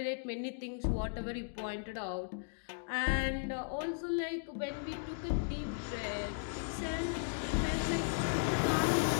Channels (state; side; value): silent; right; digital silence